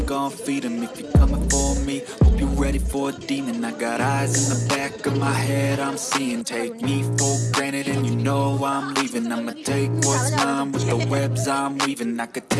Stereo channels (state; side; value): identical; both; correlation 1.00